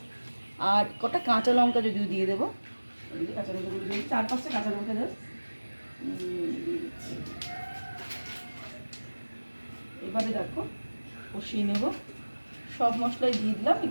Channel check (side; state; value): both; inverted; correlation -1.00